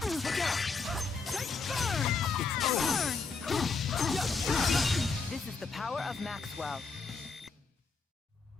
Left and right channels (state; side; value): quieter; right; 4.5 dB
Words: Look out! It's over. This is the power of Maxwell.